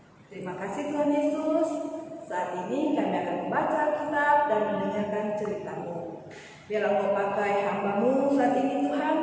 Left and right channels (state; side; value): identical; both; correlation 1.00